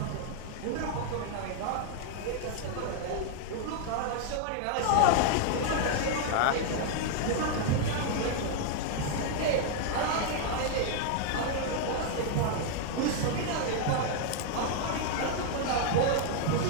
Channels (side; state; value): both; different; correlation 0.00